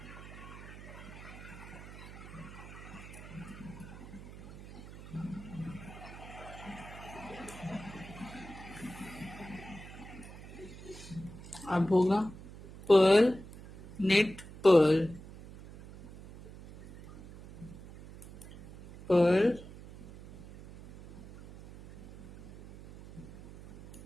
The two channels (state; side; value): noise; right; hum, 15 dB below the sound